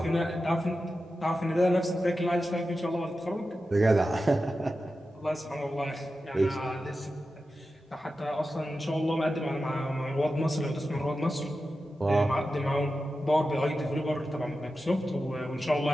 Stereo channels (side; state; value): both; normal; correlation 0.92